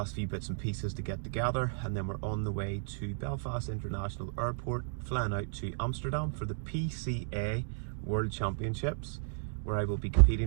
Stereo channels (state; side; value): silent; left; digital silence